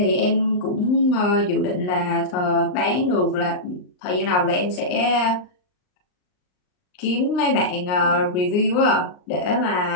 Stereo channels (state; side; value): late; right; 39 ms